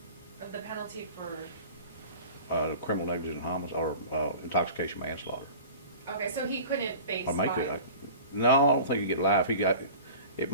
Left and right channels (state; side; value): inverted; both; correlation -0.40